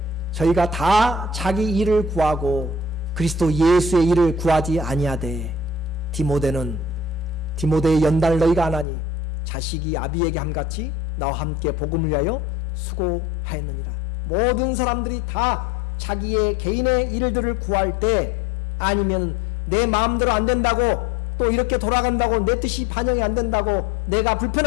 저희가 다 자기 일을 구하고 그리스도 예수의 일을 구하지 아니하되 디모데의 연단을 너희가 안 하니 자식이 아비에게 함같이 나와 함께 복음을 위하여 수고하였느니라. 모든 사람들이 다 자기의 개인의 일들을 구할 때 아니면 내 마음대로 안 된다고 또 이렇게 돌아간다고 내 뜻이 반영이 안 된다고 내가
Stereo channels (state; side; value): drops out; right; at 8.8 s